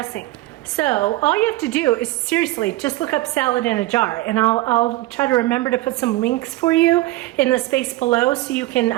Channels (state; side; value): quieter; left; 18.1 dB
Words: So all you have to do is seriously just look up salad in a jar, and I'll try to remember to put some links for you in the space below so you